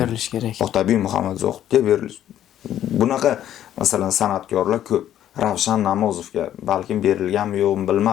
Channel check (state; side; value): quieter; right; 11.4 dB